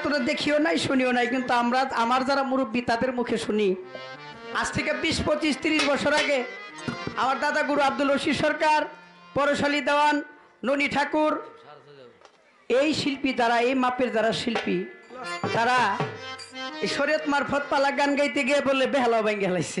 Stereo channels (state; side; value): identical; both; correlation 1.00